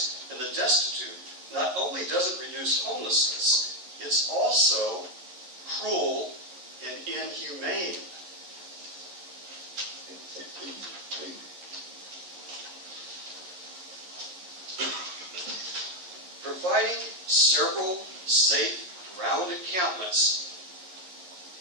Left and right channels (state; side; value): late; left; 11 ms